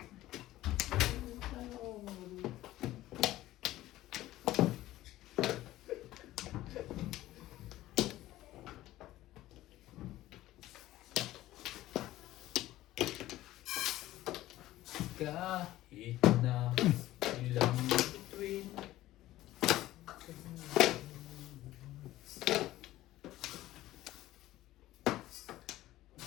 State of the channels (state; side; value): quieter; right; 15.6 dB